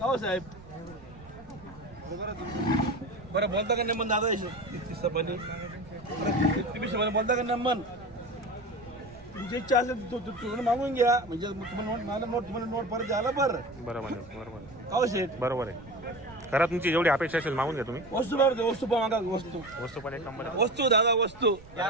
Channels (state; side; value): noise; right; rumble, 21 dB below the sound